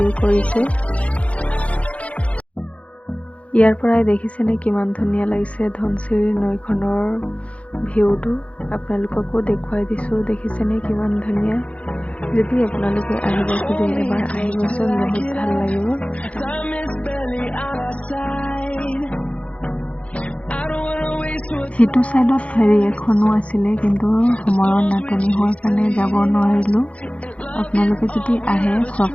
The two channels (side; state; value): right; late; 0.063 ms